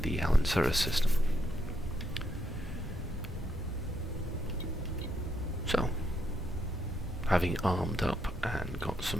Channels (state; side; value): normal; both; correlation 0.78